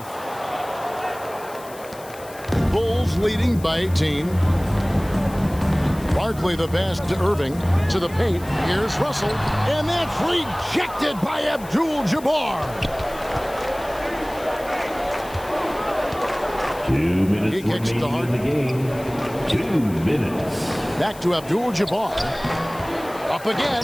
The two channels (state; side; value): noise; left; hiss, 19 dB below the sound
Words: Bulls leading by 18. Barkley the pass to Irving to the paint. Here's Russell, and that's rejected by ABDUL-JABBAR. 2 minutes He kicks to remaining in the game. 2 minutes. Back to ABDUL-JABBAR. Up